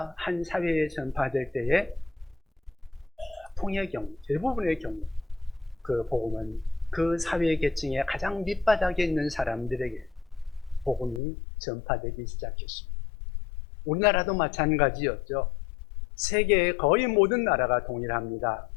한 사회에 전파될 때에 보통의 경우, 대부분의 경우 그 복음은 그 사회 계층의 가장 밑바닥에 있는 사람들에게 복음이 전파되기 시작했습니다. 우리나라도 마찬가지였죠. 세계의 거의 모든 나라가 동일합니다.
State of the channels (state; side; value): drops out; right; at 11.2 s